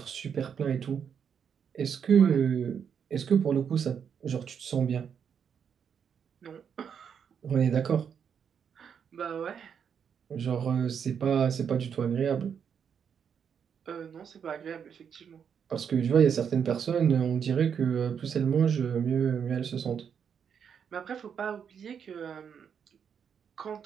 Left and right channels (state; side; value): quieter; left; 7.5 dB